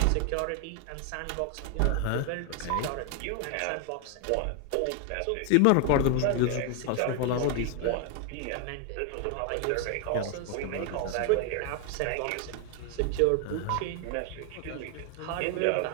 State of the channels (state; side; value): different; both; correlation 0.01